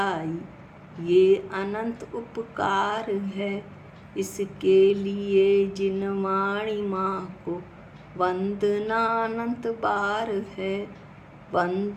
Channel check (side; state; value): both; identical; correlation 1.00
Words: ये अनंत उपकार है, इसके लिए जिन वाणी माँ को वंदना अनंत बार है,